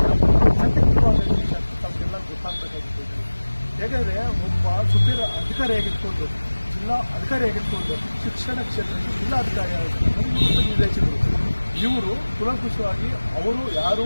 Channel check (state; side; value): inverted; both; correlation -1.00